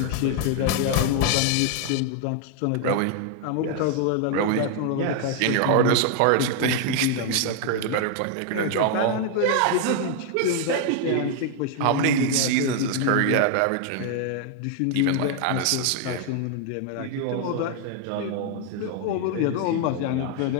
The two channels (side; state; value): both; different; correlation 0.00